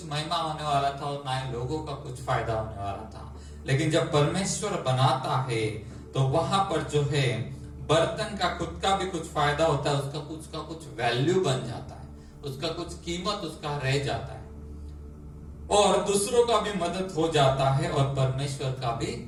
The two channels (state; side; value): identical; both; correlation 1.00